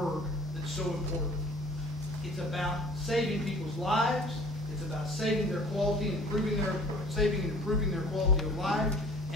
that's so important. It's about saving people's lives. It's about saving their quality and improving their quality of life.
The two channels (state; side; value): normal; both; correlation 0.49